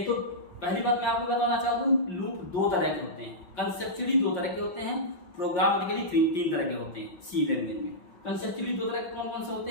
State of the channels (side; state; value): right; late; 5.6 ms